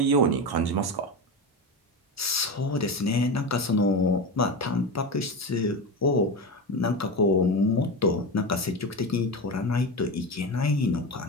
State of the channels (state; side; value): normal; both; correlation 0.21